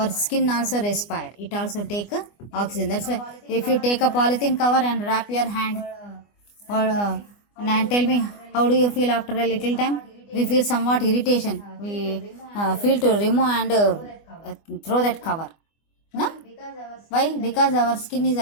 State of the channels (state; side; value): late; right; 24 ms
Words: skin also respire. It also take oxygen. That's why if you take a polythene cover and wrap your hand, or and tell me, how do you feel after a little time? We feel somewhat irritation. We feel to remove and throw that cover. No? Why? Because our skin is